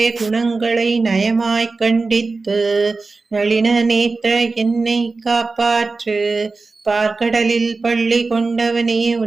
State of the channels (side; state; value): left; quieter; 3.8 dB